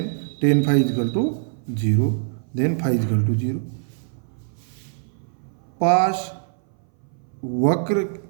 tan phi is equal to 0, then phi is equal to 0। पास वक्र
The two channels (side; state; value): left; silent; 60 dB below the other